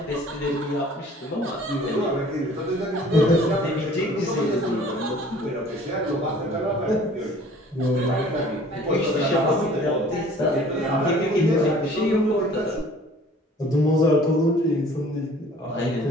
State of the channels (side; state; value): both; normal; correlation 0.51